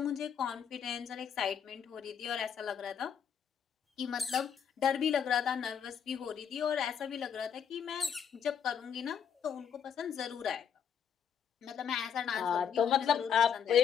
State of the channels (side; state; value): right; quieter; 7.8 dB